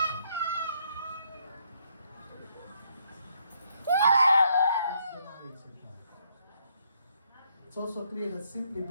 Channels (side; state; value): both; inverted; correlation -0.72